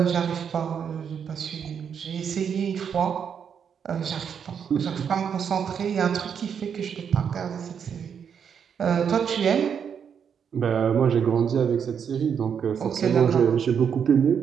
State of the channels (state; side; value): quieter; left; 7.4 dB